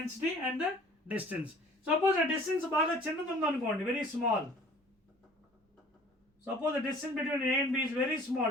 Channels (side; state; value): both; normal; correlation 0.50